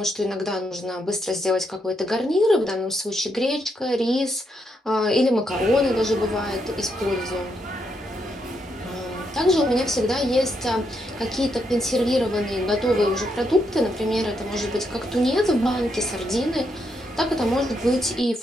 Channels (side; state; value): both; normal; correlation 0.79